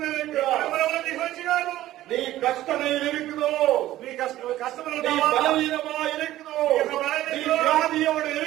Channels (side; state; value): left; quieter; 14.6 dB